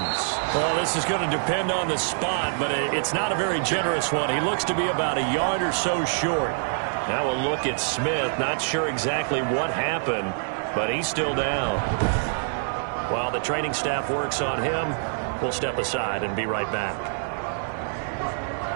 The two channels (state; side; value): silent; left; digital silence